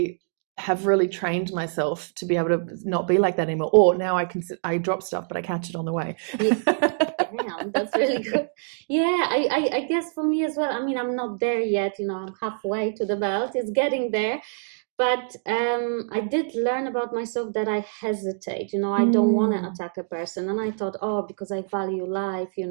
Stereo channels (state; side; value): silent; left; digital silence